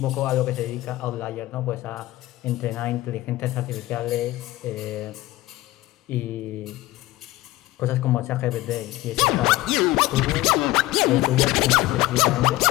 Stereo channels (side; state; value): right; quieter; 17.4 dB